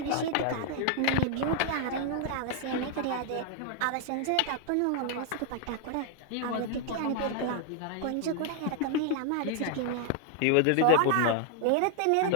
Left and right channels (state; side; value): different; both; correlation 0.00